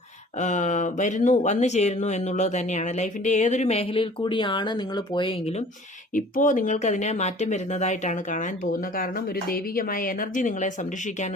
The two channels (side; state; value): both; normal; correlation 0.48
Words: വന്നു ചേരുന്നു എന്നുള്ളത് തന്നെയാണ്. ലൈഫിൻ്റെ ഏതൊരു മേഖലയിൽ കൂടിയാണ് നിങ്ങൾ പോയെങ്കിലും ഇപ്പോൾ നിങ്ങൾക്കതിനെ മാറ്റം വരുന്നതായിട്ടാണ് കാണാൻ പോകുന്നത്. കാരണം ഒരു ദൈവികമായ എനർജി നിങ്ങളെ